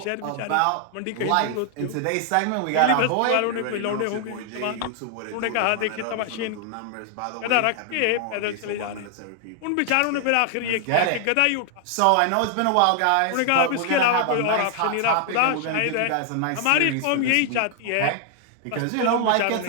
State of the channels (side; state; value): both; different; correlation 0.00